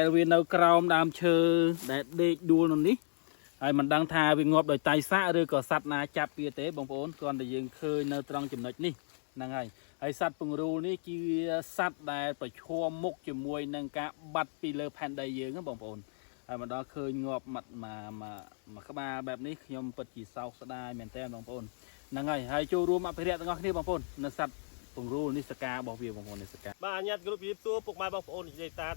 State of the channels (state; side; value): silent; right; digital silence